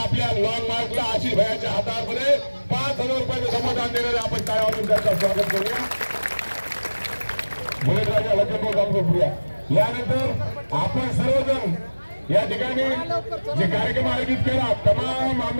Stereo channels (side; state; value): both; inverted; correlation -1.00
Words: लॉंग मार्चला आशिष भैयाच्या हातामध्ये 5,000 रुपयाचं धमदान देणारे आपण टाळ्या वाजवून त्यांचं स्वागत करूया। मुलेराजा लक्ष्मण गावकप्रिया, यानंतर आपण सर्वजण या ठिकाणी जे कार्यक्रम आयोजित केला, तमाम